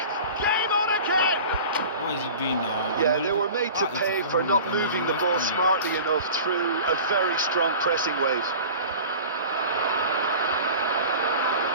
Game on again! What is he doing now? Yeah, they were made to pay for not moving the ball smartly enough through a very strong pressing wave.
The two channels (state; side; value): inverted; both; correlation -0.38